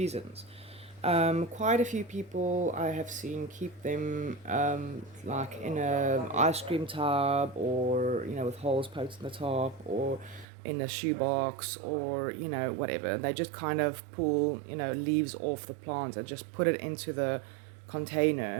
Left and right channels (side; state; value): left; drops out; at 10.5 s